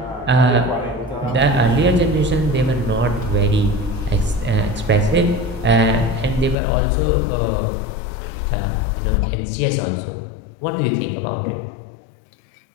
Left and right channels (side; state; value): right; drops out; at 6.6 s